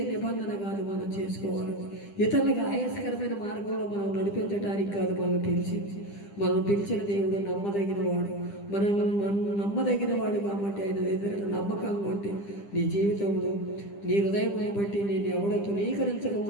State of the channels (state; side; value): late; right; 10 ms